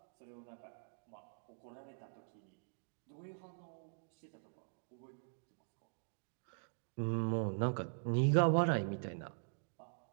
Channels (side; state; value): left; silent; digital silence